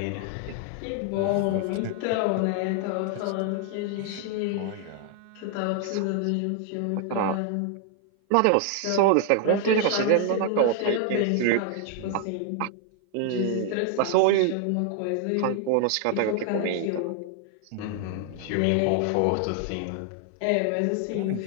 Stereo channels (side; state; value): both; different; correlation 0.00